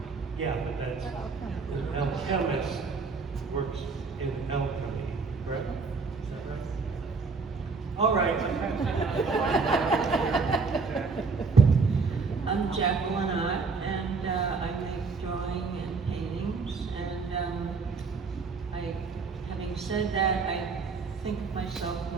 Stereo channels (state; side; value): quieter; left; 4.5 dB